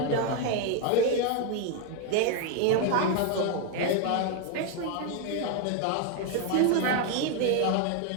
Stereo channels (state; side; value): different; both; correlation 0.01